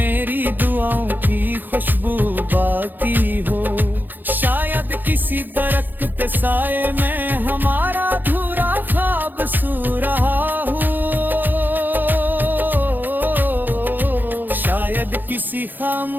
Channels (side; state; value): left; late; 0.089 ms